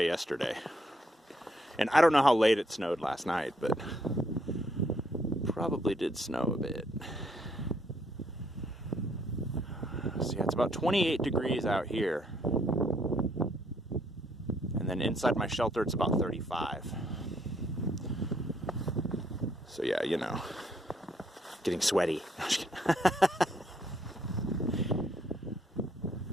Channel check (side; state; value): both; normal; correlation 0.70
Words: yesterday. And I don't know how late it snowed last night, but probably did snow a bit. So yeah, it's about 28 degrees out here. And then inside my shelter, it's about 35. So yeah, you know, getting sweaty.